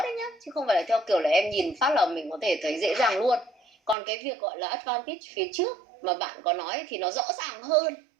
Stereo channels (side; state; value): left; drops out; at 4.0 s